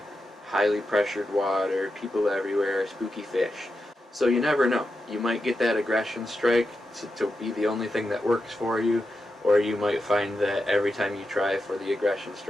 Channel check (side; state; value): both; normal; correlation 0.88